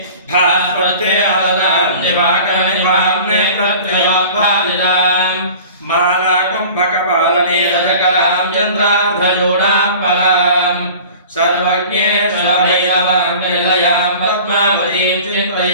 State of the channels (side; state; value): both; inverted; correlation -0.42